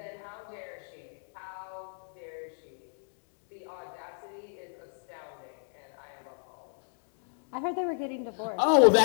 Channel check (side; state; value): right; silent; digital silence